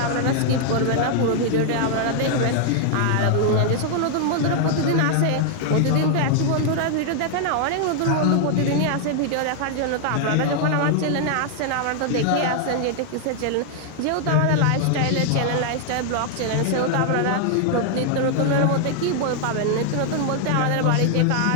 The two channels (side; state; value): both; different; correlation 0.00